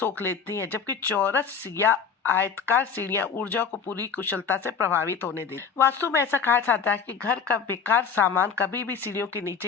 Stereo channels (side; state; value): right; quieter; 6.4 dB